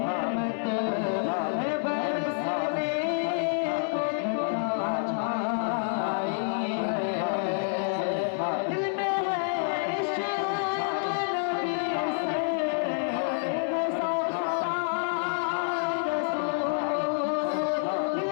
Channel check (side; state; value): right; silent; 59 dB below the other